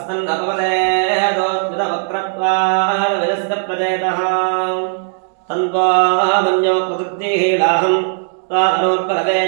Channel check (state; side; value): silent; left; 68 dB below the other